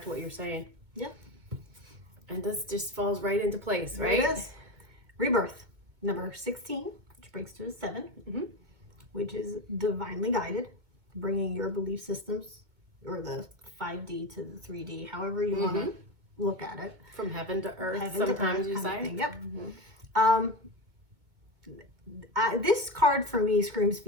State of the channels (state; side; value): late; left; 2.2 ms